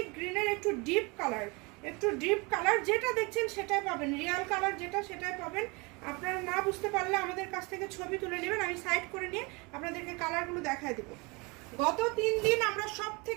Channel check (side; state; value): left; quieter; 27.9 dB